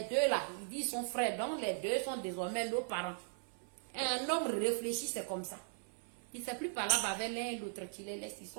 deux là, ils disent sont frères. Donc, les deux sont désormais nos parents. Un homme réfléchi, c'est comme ça. Il ne sait plus parler avec l'un et l'autre. Tu les laisses, ils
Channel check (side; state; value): left; silent; 52 dB below the other